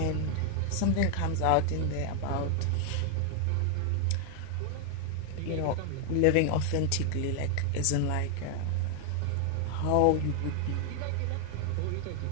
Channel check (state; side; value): different; both; correlation 0.00